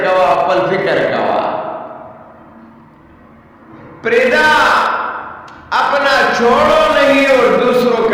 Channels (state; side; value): identical; both; correlation 1.00